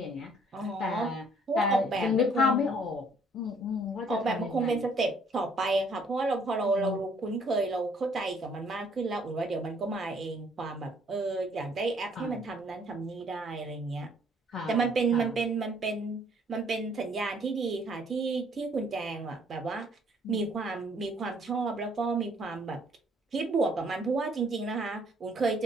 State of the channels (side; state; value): both; normal; correlation 0.62